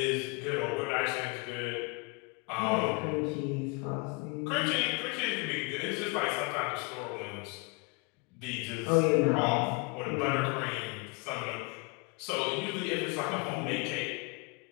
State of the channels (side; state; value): right; quieter; 30.4 dB